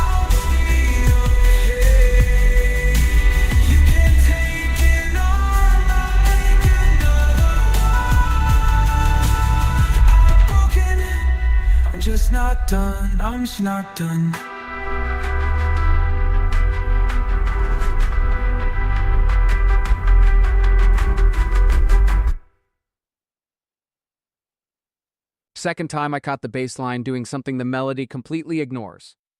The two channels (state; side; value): identical; both; correlation 1.00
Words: be okay. You can take it on, I'll make another one. I'm broken, I'm just not done, I'm just not done. Second time I caught the bass line doing something the melody completely ignores,